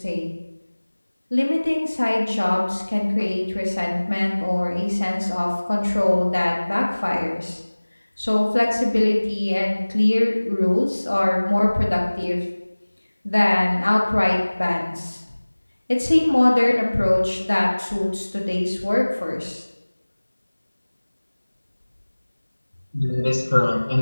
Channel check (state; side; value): inverted; both; correlation -1.00